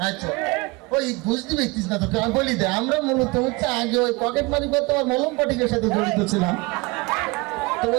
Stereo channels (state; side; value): quieter; left; 25.2 dB